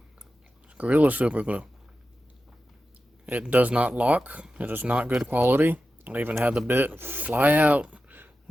Gorilla super glue. It does not lock. It is not good quality. I even had the bit fly out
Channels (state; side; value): normal; both; correlation 0.92